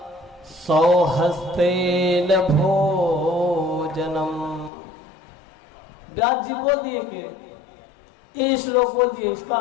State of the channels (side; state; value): right; drops out; at 4.7 s